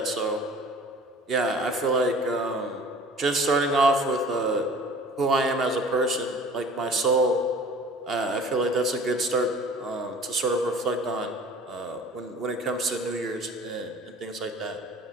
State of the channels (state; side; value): normal; both; correlation 0.46